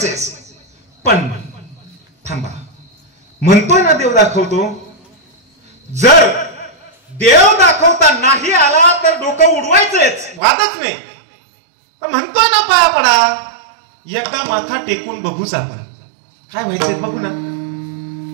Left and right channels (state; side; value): drops out; left; at 10.4 s